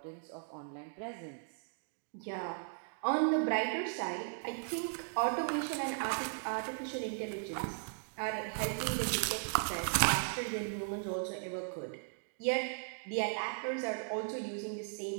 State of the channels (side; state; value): left; silent; digital silence